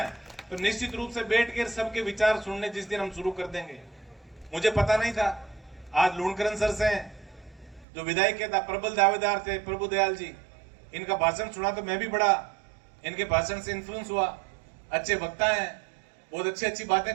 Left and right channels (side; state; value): left; drops out; at 7.9 s